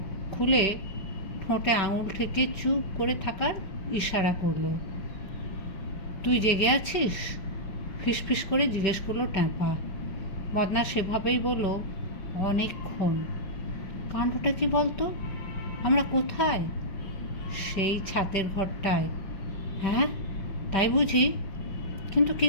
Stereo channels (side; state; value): right; late; 5.2 ms